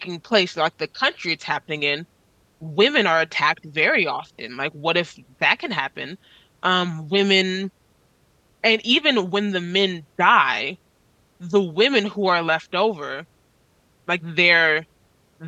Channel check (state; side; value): identical; both; correlation 1.00